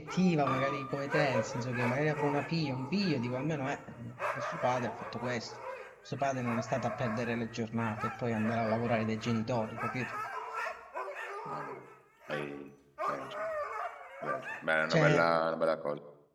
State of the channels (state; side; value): identical; both; correlation 1.00